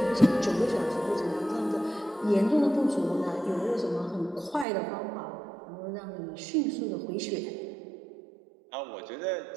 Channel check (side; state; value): left; drops out; at 4.7 s